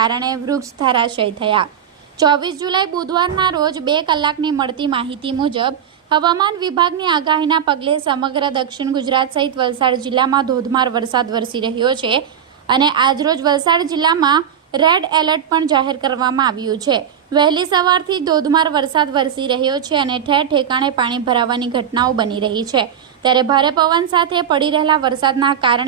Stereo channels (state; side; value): quieter; left; 8.7 dB